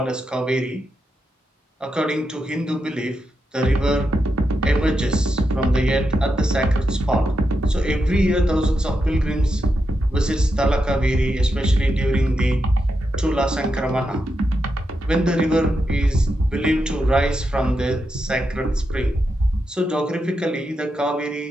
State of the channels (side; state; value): both; normal; correlation 0.86